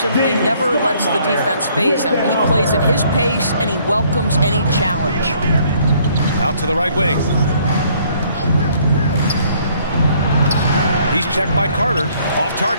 simply never lets the defense phase him. He plays at his pace and he welcomes any challenge. Out to the right wing. He's checked by Carter. Off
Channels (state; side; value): inverted; both; correlation -0.63